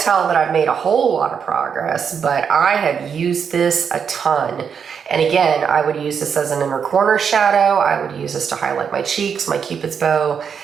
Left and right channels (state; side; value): quieter; left; 6.9 dB